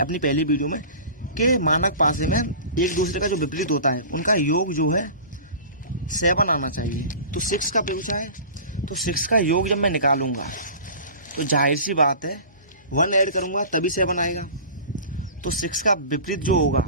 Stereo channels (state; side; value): inverted; both; correlation -0.38